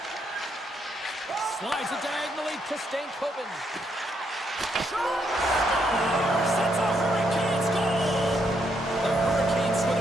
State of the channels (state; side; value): normal; both; correlation 0.76